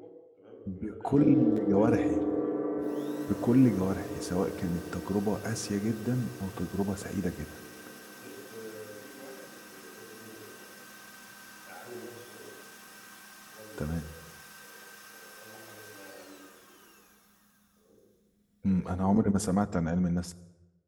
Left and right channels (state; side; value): identical; both; correlation 1.00